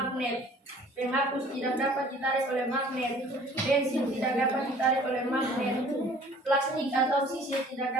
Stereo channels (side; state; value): both; normal; correlation 0.52